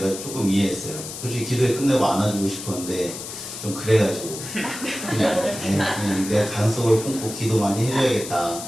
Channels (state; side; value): noise; left; hiss, 9 dB below the sound